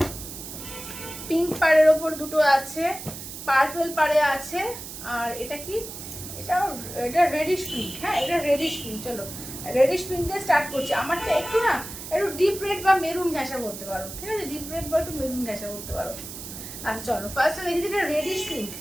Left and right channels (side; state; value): right; noise; hiss, 11 dB below the sound